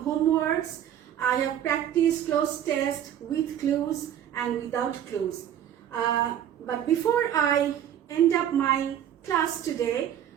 homeworks. I have practiced closed test with clues and without clues. But before I end up my class today,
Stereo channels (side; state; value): left; quieter; 10.3 dB